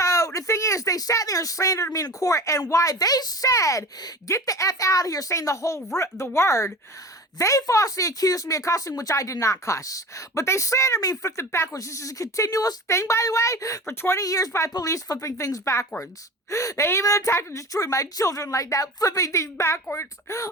the thing is, they sat there and slandered me in court, and why they said, get the F out of here, saying the word, they falsely accused me of cussing, which I did not cuss. But they slandered me and flipped it backwards. This is a continuous thing, by the way, for 20 years by police flipping things backwards. They even attacked and destroyed my children like that, flipping things backwards,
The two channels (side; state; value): both; normal; correlation 0.35